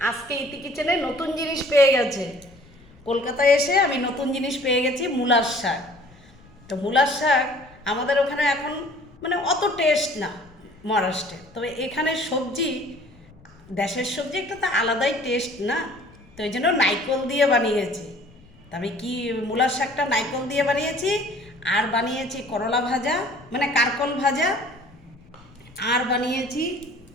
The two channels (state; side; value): noise; left; rumble, 26 dB below the sound